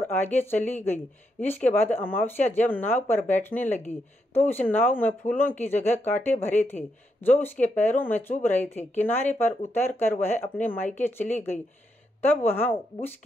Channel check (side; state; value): both; normal; correlation 0.81